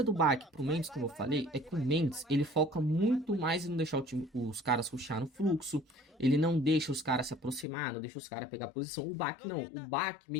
do Bak pro Mendes, como eu falei, é que o Mendes, ele foca muito mais em não deixar os caras rushar no fluxo. Ele não deixa os caras se aproximar, não deixa os caras pegar posição. O Bak não. O Bak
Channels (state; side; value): drops out; right; at 7.7 s